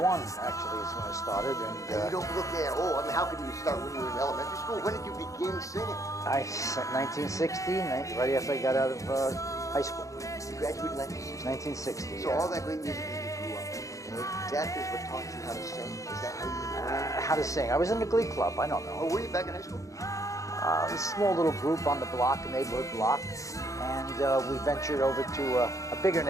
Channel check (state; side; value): late; right; 0.16 ms